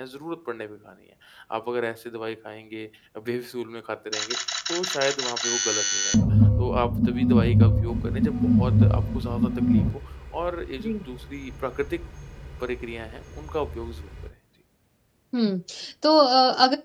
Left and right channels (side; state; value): both; identical; correlation 1.00